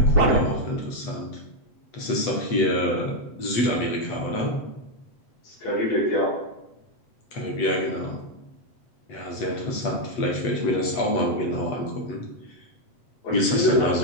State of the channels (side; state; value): right; late; 8.1 ms